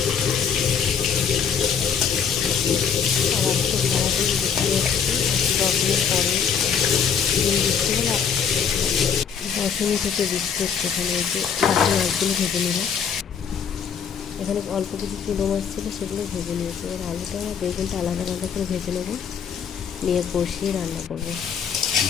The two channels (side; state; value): right; quieter; 7.1 dB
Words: আর আজকে সারাদিন বৃষ্টি হচ্ছে। 10 দিন পরে দিন বৃষ্টি হলো, 10 থেকে বৃষ্টি হচ্ছে। এখানে এই যে বাকি মাছগুলো ভেজে নিলাম। এখানে অল্প কিছু চুলো মাছ ছিল, সেগুলো ভেজে নিয়েছি। এবার আলুটা আর বেগুনটা আলাদা আলাদা করে ভেজে নেবো, নিয়ে কষিয়ে রান্না করবো।